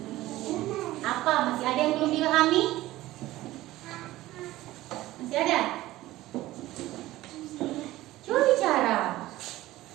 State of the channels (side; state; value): left; quieter; 16.6 dB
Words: Apa? Masih ada yang belum dipahami? Masih ada? Coba bicara.